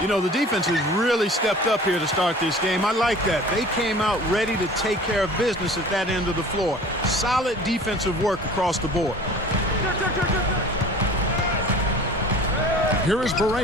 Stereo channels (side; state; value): both; normal; correlation 0.44